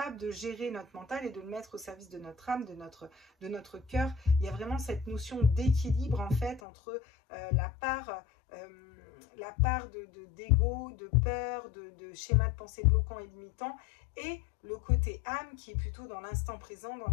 de gérer notre mental et de le mettre au service de notre âme, de notre cœur. Il y a vraiment cette notion d'équilibre, en fait, entre la part d'ego, de peur, de schéma de pensée bloquant et limitant, et le côté âme qui est plutôt dans l'instant présent, dans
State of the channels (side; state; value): right; drops out; at 6.6 s